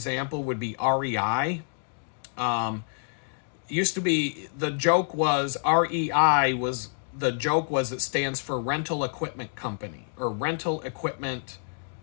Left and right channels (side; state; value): right; silent; digital silence